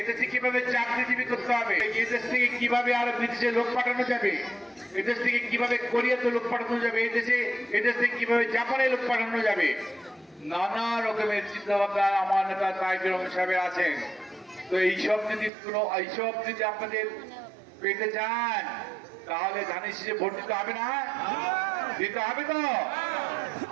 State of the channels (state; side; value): drops out; left; at 15.5 s